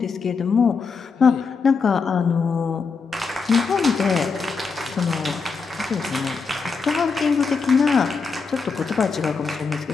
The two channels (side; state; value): right; quieter; 5.0 dB